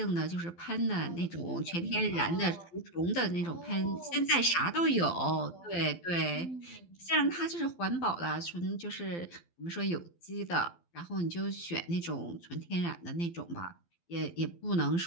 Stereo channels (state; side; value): late; right; 12 ms